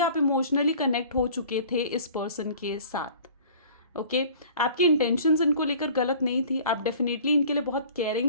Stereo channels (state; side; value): inverted; both; correlation -0.48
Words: आप इमोशनली कनेक्ट हो चुके थे इस पर्सन के साथ। ओके आपकी इंटेंशंस इनको लेकर गलत नहीं थी, आप डेफिनेटली इनके लिए बहुत केयरिंग